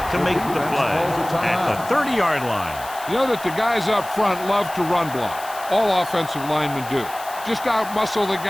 to make the play at the 30-yard line. You know that the guys up front love to run block. All offensive linemen do. Just out-muscle the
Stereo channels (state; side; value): noise; left; hiss, 16 dB below the sound